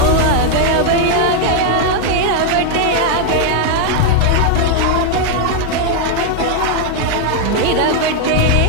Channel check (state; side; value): different; both; correlation 0.00